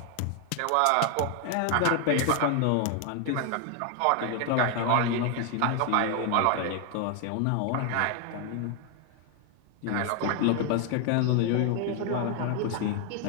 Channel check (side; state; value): both; different; correlation 0.01